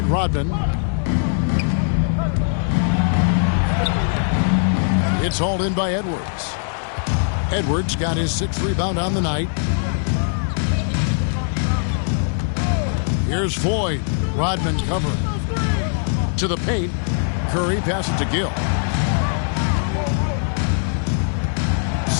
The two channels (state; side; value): silent; right; digital silence